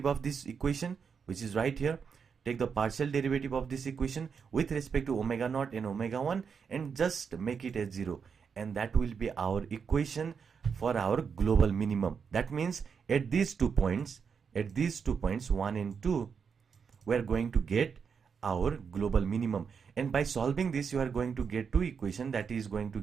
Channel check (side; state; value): left; quieter; 6.3 dB